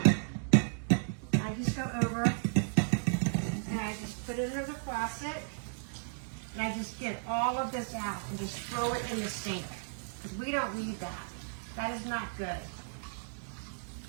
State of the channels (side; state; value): left; silent; digital silence